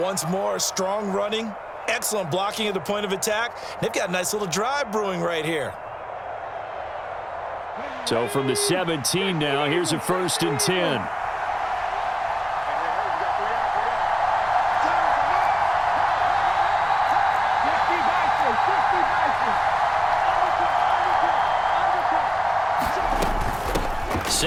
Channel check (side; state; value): both; identical; correlation 1.00